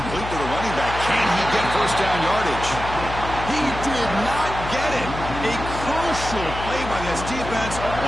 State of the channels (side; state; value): left; noise; hum, 8 dB below the sound